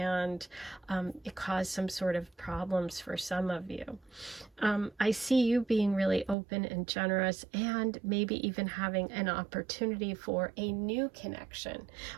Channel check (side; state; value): left; drops out; at 6.4 s